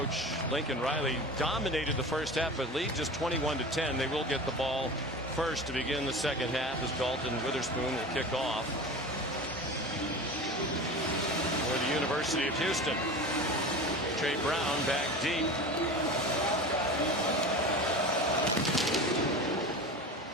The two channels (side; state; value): both; normal; correlation 0.32